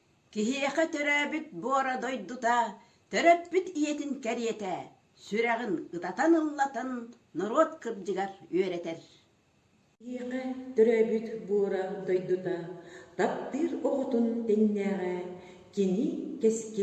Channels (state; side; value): identical; both; correlation 1.00